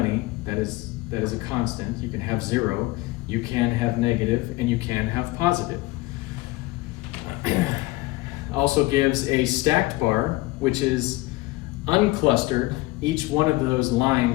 that is a constant. You can have 0, you can have negative, and you can have positive. Also gives a stacked bar, which is unclustered. Each one of those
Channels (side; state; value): right; quieter; 20.2 dB